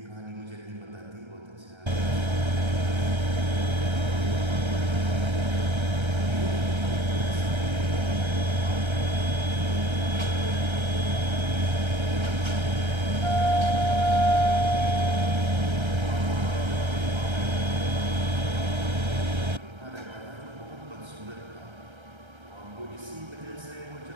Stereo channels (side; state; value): left; late; 1.3 ms